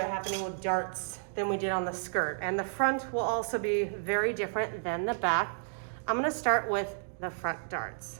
happening with darts than we did on the skirt, and the front will also be very different than the back. I'm gonna start with the front darts,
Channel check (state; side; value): silent; left; digital silence